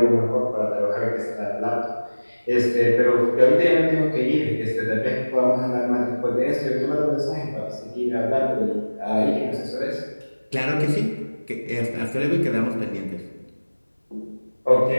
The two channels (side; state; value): both; inverted; correlation -1.00